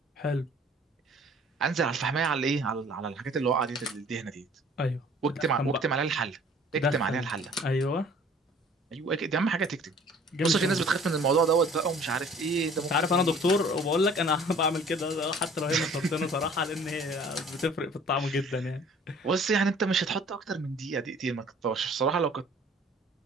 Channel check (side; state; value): both; normal; correlation 0.52